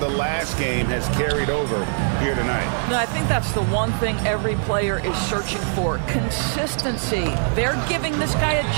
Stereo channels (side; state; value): left; silent; 64 dB below the other